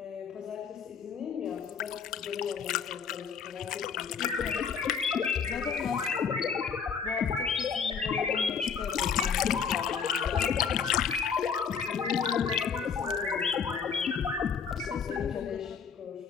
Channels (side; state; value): right; quieter; 6.4 dB